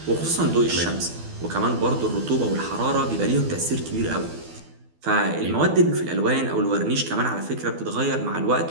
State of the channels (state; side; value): late; left; 12 ms